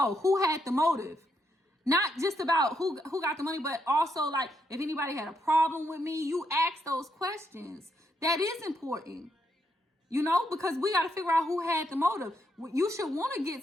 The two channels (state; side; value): normal; both; correlation 0.78